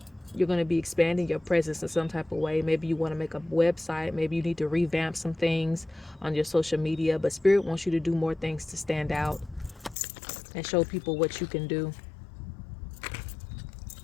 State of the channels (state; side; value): drops out; right; at 10.0 s